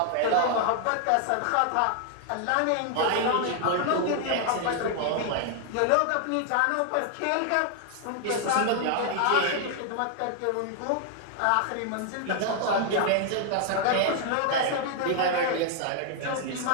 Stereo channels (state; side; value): different; both; correlation 0.00